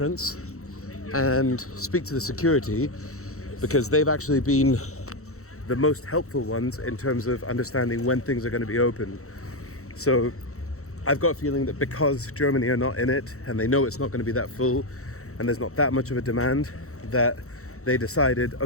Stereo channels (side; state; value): right; late; 0.64 ms